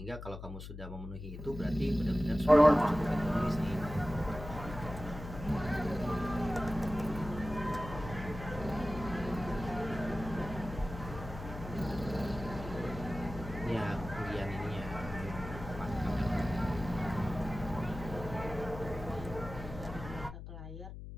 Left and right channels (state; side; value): noise; left; hum, 10 dB below the sound